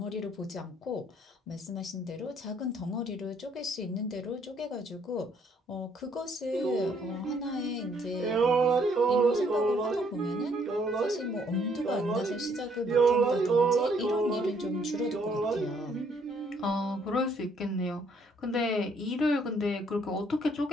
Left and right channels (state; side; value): normal; both; correlation 0.67